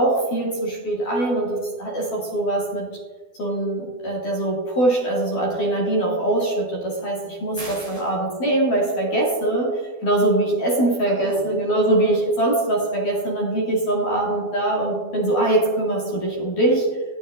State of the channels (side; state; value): right; late; 12 ms